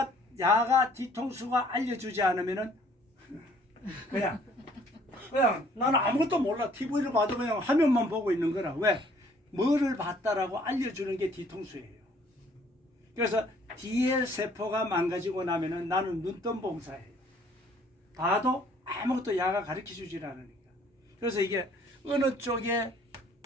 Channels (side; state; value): both; normal; correlation 0.59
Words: 뒤통수가 알려주지 않으면은 그냥 나는 아무것도 몰라. TV를 봐도 그냥 화면만 보고 있는 거라. 왜? 뭐를 봤다라고 알려주는 게 뒤통수예요. 그래서 뒤에 세포가 망가지고 나면은 나는 눈뜬봉사예요. 봐도 아무것도 야가 가르쳐주질 않으니까. 그래서 이게 어느 쪽에